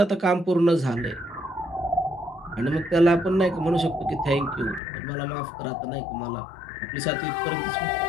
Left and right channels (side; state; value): right; drops out; at 4.8 s